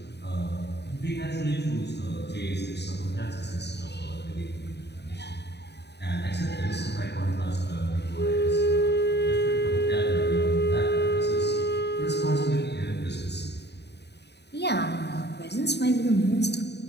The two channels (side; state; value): right; late; 0.49 ms